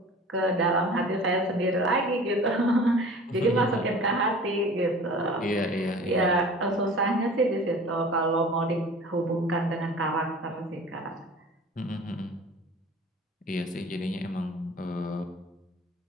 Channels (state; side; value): normal; both; correlation 0.43